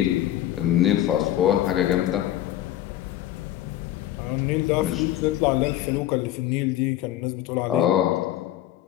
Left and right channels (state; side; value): quieter; right; 13.1 dB